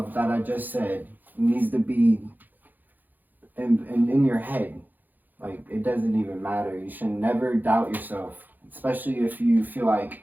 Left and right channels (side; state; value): left; late; 0.086 ms